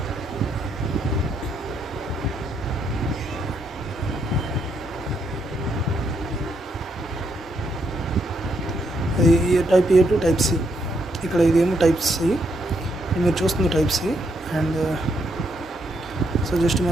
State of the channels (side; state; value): both; normal; correlation 0.76